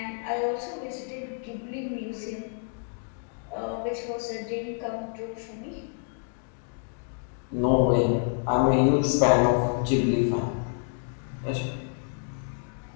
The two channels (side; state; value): right; silent; 59 dB below the other